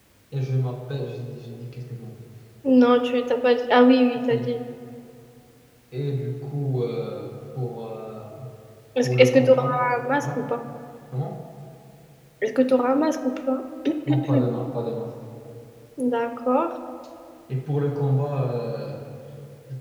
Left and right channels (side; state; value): both; identical; correlation 1.00